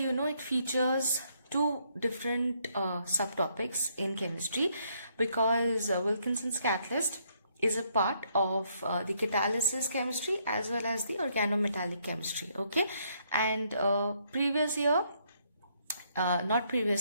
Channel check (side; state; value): both; inverted; correlation -0.71